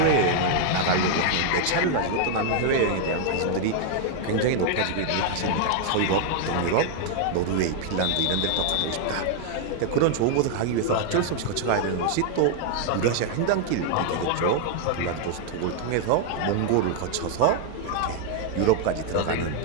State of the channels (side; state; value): both; different; correlation 0.00